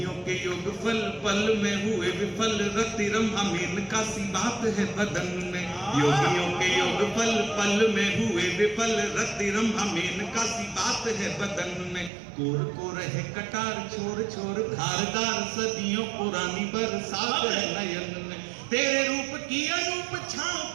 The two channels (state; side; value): drops out; left; at 12.1 s